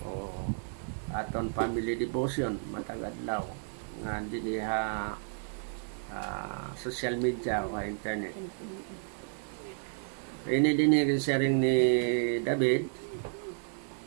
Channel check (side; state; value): left; silent; digital silence